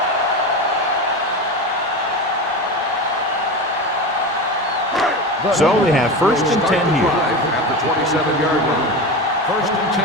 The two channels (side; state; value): both; normal; correlation 0.24